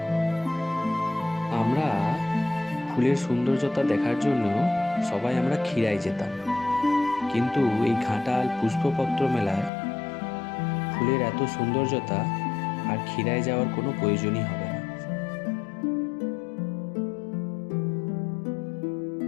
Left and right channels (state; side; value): drops out; right; at 9.7 s